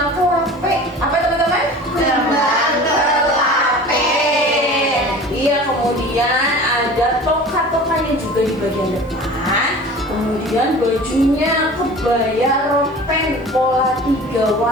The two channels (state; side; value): normal; both; correlation 0.40